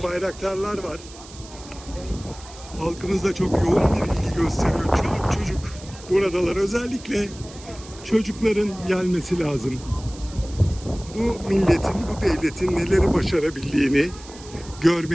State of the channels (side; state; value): right; noise; hiss, 18 dB below the sound